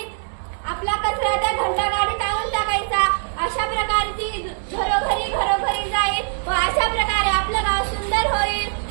आपला कचरा त्या घंटा गाडीत आणून टाकायचा. अशा प्रकारे ती घरोघरी जाईल व अशा प्रकारे आपलं गाव सुंदर होईल.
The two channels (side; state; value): left; silent; 64 dB below the other